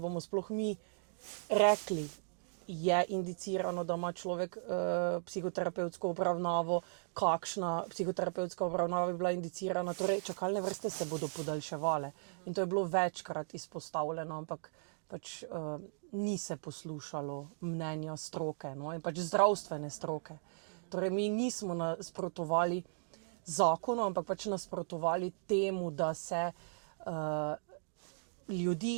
sploh mi rekli, je indicirano, da ima človek psihoterapevtsko obravnavo, kakšna psihoterapevtska obravnava bi bila indicirana. Torej, čakalne vrste se bodo podaljševale. In to je bilo večkrat izpostavljeno, ampak pač ni se poslušalo mnenja stroke, no, in pač zdravstvene stroke. Torej, mi nismo nasprotovali zakonu, ampak pač nasprotovali temu, da se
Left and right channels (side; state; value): left; silent; digital silence